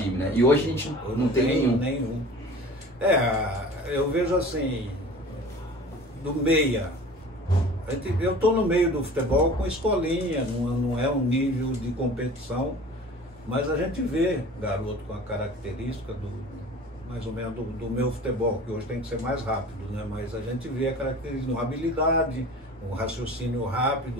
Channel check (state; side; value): normal; both; correlation 0.42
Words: né? E hoje a gente não tem nenhum. Eu vejo assim, do meia, eu tô no meio do futebol com escolinha, não é um nível de competição. Mas a gente vê garoto com a característica mais ou menos do meu futebol, que hoje tem que ser mais rápido, né? Mas a gente vê a característica, uma habilidade, um raciocínio